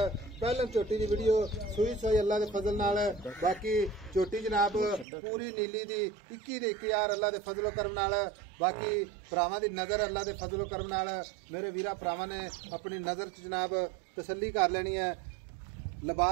पहले झोटी की वीडियो सूई सोई अल्लाह के फजल नाल। बाकी झोटी जनाब पूरी नीली दी 21,000 अल्लाह के फजलो करम नाल। बाकी भरावां दी नजर अल्लाह के फजलो करम नाल मेरे वीरा भरावां ने अपनी नजर च जनाब तसल्ली कर लेनी है।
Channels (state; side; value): drops out; left; at 5.1 s